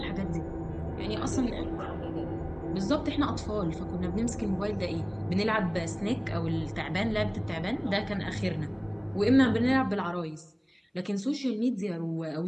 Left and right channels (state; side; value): identical; both; correlation 1.00